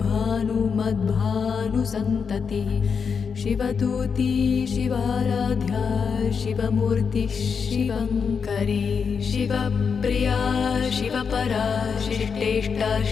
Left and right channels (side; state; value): right; quieter; 6.0 dB